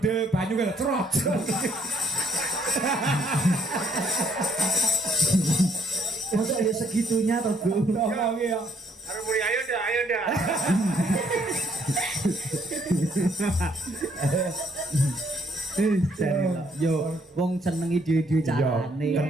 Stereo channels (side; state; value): both; normal; correlation 0.68